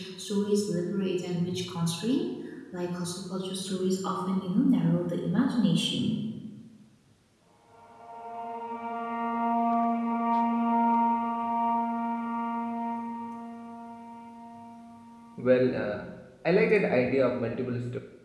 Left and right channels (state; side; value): identical; both; correlation 1.00